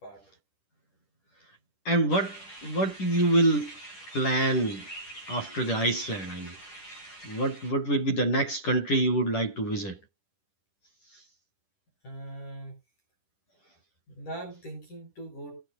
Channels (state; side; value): late; right; 10 ms